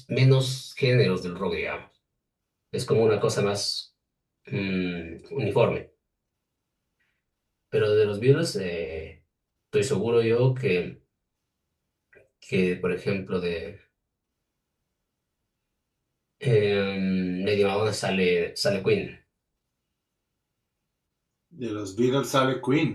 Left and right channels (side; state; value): both; identical; correlation 1.00